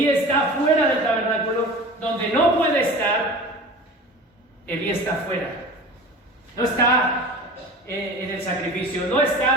está fuera del tabernáculo donde no puede estar. Elí está afuera. No está en el sacrificio, no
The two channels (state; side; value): normal; both; correlation 0.37